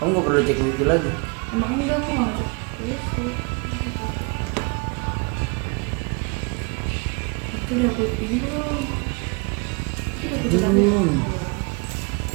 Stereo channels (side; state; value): left; quieter; 31.7 dB